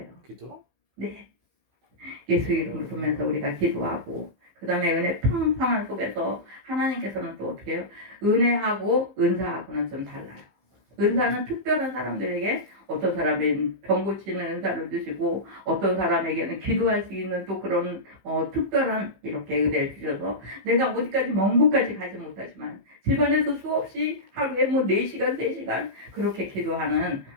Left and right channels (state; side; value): late; left; 15 ms